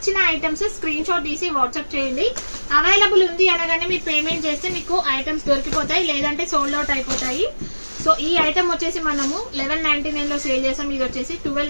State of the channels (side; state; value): both; inverted; correlation -1.00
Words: ఐటమ్స్ స్క్రీన్ షాట్ తీసి వాట్సాప్ చేయండి. అవైలబుల్ ఉంది అనగానే మీరు పేమెంట్ చేస్తే మీకు ఐటమ్స్ దొరికిపోతాయి, లేదంటే సోల్డ్ అవుట్ అయిపోతాయి. సో ఈ ఐటమ్ వచ్చేసి మనము 1199 లో సేల్ చేసాం, ఇది వచ్చేసి